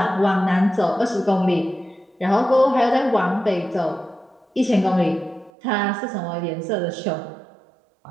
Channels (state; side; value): drops out; left; at 5.5 s